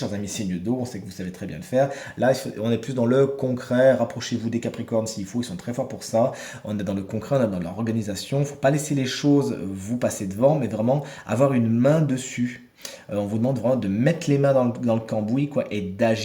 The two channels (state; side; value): identical; both; correlation 1.00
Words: amis signes d'eau, on sait que vous savez très bien le faire. Là, on est plus dans le concret, rapprochez-vous des Capricornes s'il faut, ils sont très forts pour ça. On est dans le concret, on est dans l'organisation. Il ne faut pas laisser les choses vous passer devant, mais vraiment avoir une main dessus. On vous demande vraiment de mettre les mains dans le cambouis quoi, et